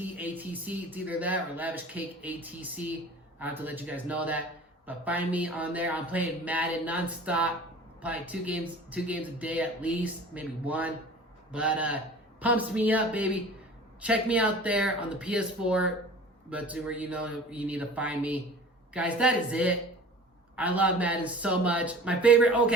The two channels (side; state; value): both; normal; correlation 0.42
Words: It's either that or Lavish Cake ATC. I have to let you guys know that. But find me on there. I'm playing Madden nonstop. Probably two games a day at least, maybe one. But pumps me up, baby. Check me out there on the PS4. But where you need to find me. Guys, that is it. I love Madden so much. My favorite